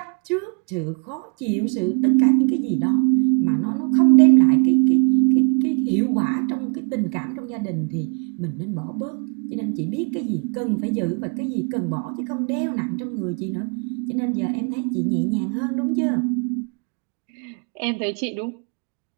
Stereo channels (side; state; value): left; quieter; 38.1 dB